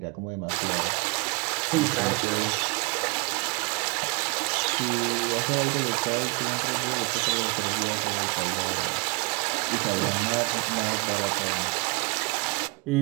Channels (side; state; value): left; quieter; 30.5 dB